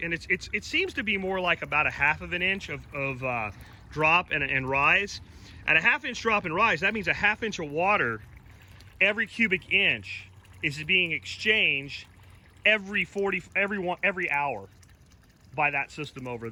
and it seems to be more like about a 1/2 inch of drop and rise. At a 1/2 inch drop and rise, that means a 1/2 inch of water every cubic inch is being exchanged every hour by that system over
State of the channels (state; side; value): identical; both; correlation 1.00